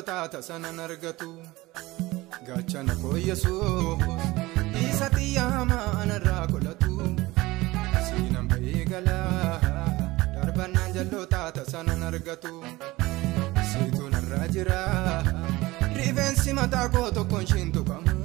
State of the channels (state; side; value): quieter; left; 19.9 dB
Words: tasanan argatu. Gachana koo Yesuus isa xiyyaa hamaa anarraa qolatu siinan ba'ee galaa darbannaan jalloota tasanan argatu. Siituu narraa jira rifeensi mataa koo tokkoon shin tuqamu